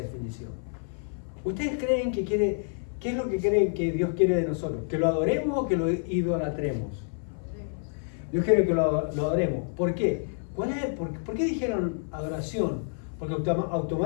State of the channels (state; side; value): silent; right; 59 dB below the other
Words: ¿Ustedes creen que qué es lo que creen que Dios quiere de nosotros? ¿Que lo adoremos o que lo idolatremos? Dios quiere que lo adoremos. ¿Por qué? ¿Por qué dijeron adoración? Porque